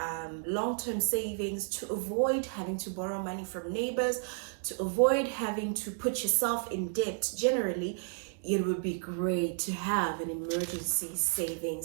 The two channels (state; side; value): silent; left; 56 dB below the other